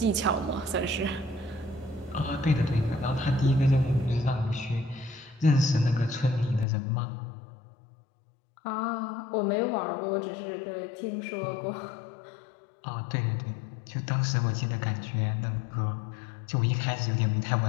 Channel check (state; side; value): drops out; right; at 6.7 s